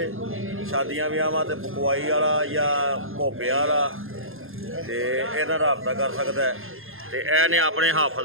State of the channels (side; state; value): left; late; 0.60 ms